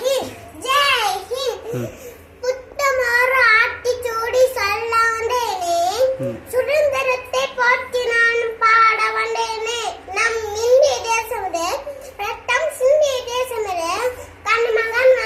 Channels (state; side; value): identical; both; correlation 1.00